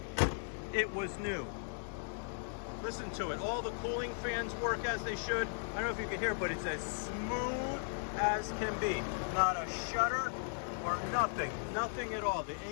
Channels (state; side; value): silent; right; digital silence